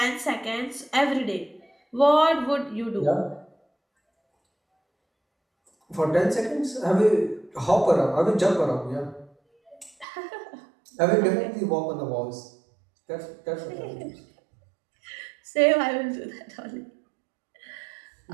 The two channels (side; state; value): left; drops out; at 10.1 s